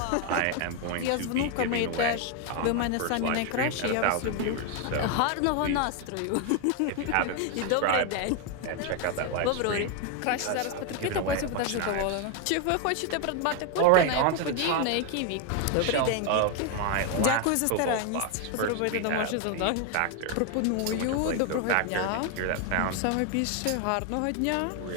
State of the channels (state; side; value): different; both; correlation 0.01